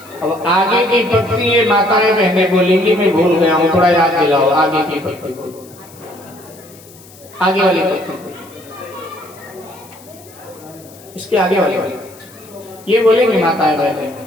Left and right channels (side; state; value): left; noise; hiss, 23 dB below the sound